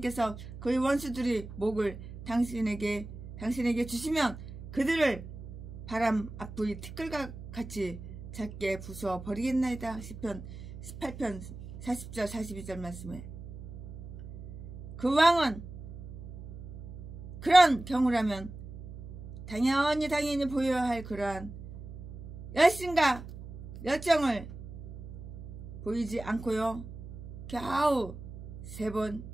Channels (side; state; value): right; noise; hum, 12 dB below the sound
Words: 그의 원수들의 목을 당신에게 주시면 그들을 바람 앞의 티끌과 같이 작게 부숴 버리겠나이다. 시편 18편 40절 42절 말씀에. 그 왕은 그런 경우라면 당연히 보여야 할 그러한 열심과 열정을 보이지 않고요. 겨우 3번